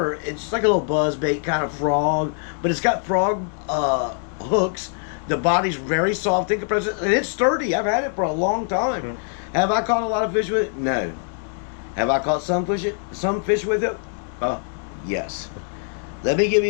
it's just like a little buzzbait kind of frog. But it's got frog hooks. The body's very soft in comparison, and it's sturdy. I've had it for a long time. Mm. Have I caught a lot of fish with it? No. Have I caught some fish with it? Yes. Let me give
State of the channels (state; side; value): silent; right; 58 dB below the other